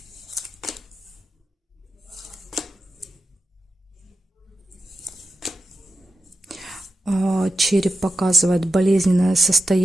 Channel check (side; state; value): both; normal; correlation 0.92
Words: Череп показывает болезненное